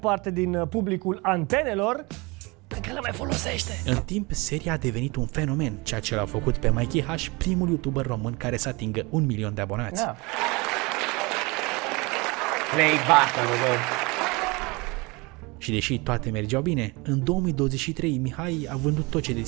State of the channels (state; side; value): quieter; left; 26.0 dB